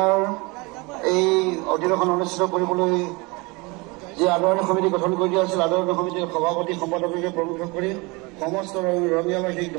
এই অধিৱেশন অনুষ্ঠিত কৰিবলৈ যি আদৰণি সমিতি গঠন কৰি দিয়া হৈছিল আদৰণি সমিতিৰ সভাপতি সম্পাদককে প্ৰৱেশ কৰি সমস্ত ৰঙিয়াবাসীক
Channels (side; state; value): left; quieter; 26.3 dB